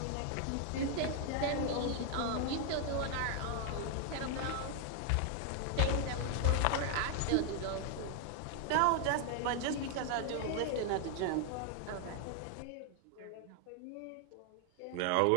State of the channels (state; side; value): different; both; correlation 0.00